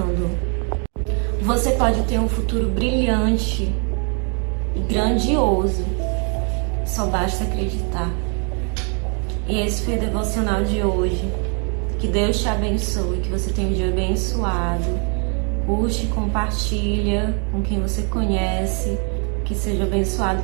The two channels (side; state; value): left; quieter; 38.5 dB